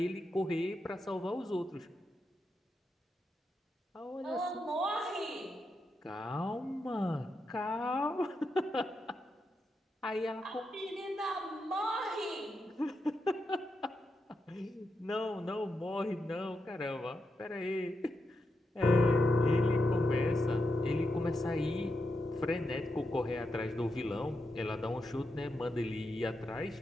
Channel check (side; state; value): both; normal; correlation 0.86